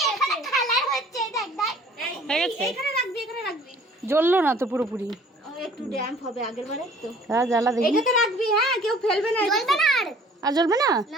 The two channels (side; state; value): both; normal; correlation 0.53